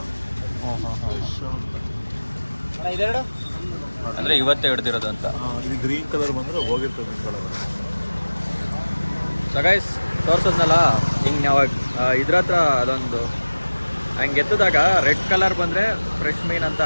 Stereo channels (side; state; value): both; inverted; correlation -1.00